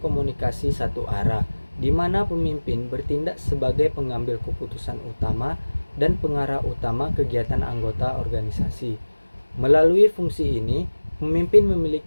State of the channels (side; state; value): both; inverted; correlation -1.00